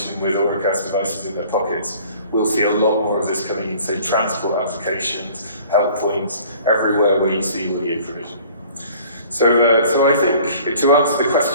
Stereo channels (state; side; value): inverted; both; correlation -0.51